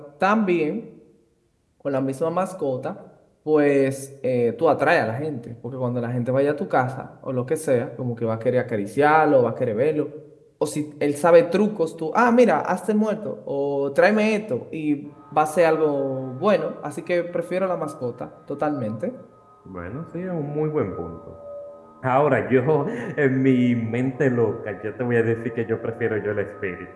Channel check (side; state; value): both; identical; correlation 1.00